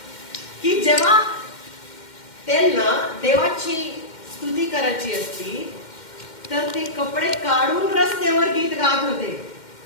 की जेव्हा त्यांना देवाची स्तुती करायची असती तर ते कपडे काढून रस्त्यावर गीत गात होते.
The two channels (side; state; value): right; late; 2.1 ms